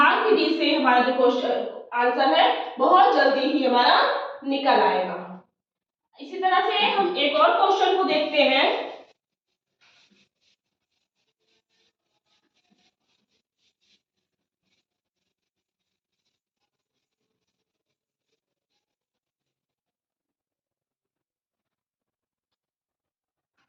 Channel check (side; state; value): both; identical; correlation 1.00